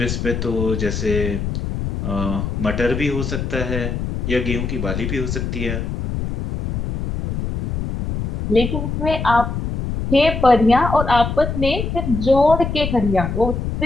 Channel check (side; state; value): left; noise; rumble, 3 dB below the sound